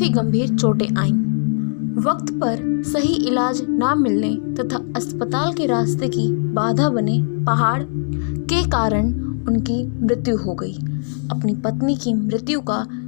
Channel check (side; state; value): right; silent; 65 dB below the other